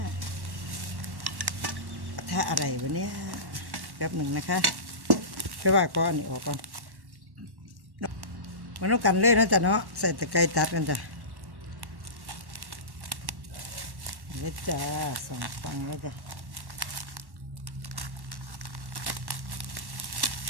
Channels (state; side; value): late; left; 1.1 ms